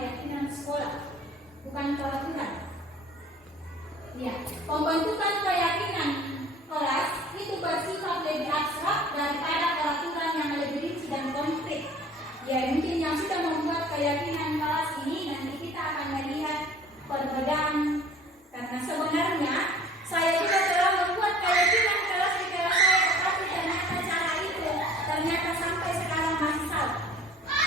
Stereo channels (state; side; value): normal; both; correlation 0.48